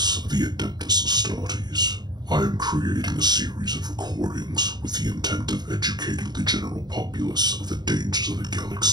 of the Adeptus Astartes. I am creating a series of recordings with the intent of educating the general populace of the dangers of the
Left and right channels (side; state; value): left; late; 0.20 ms